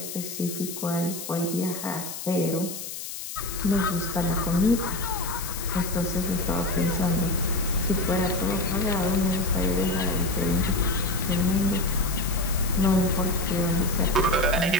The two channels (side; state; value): left; noise; hiss, 8 dB below the sound